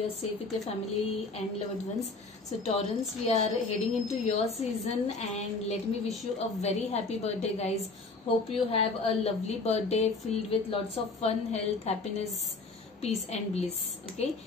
are safe with your family and loved ones. So Taurans, we are heading into your season and let me wish you a very happy birthday guys. Hope you have a lovely birthday filled with lots of fun, health, happiness, peace and bliss. Okay,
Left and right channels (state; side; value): quieter; right; 3.7 dB